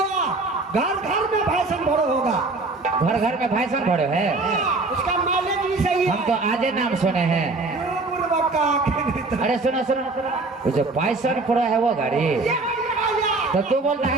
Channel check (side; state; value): left; quieter; 3.4 dB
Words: घर घर में भाषण भरो होगा। घर घर में भाई सन भरो है? उसका माइलेज भी सही है। हम तो आजे नाम सुने हैं। अरे सुनो सुनो, वो जो पाइसन प्रो है वो गाड़ी, तो तू बोलता